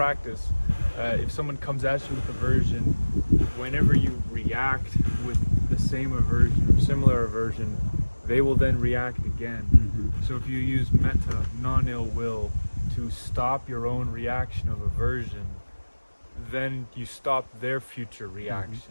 if someone comes at you with aversion, whenever you react with the same aversion or similar aversion, they will then react again. So if you use metta, non-ill will, to stop your own reaction of aversion, then you stop their future reaction.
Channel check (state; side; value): inverted; both; correlation -1.00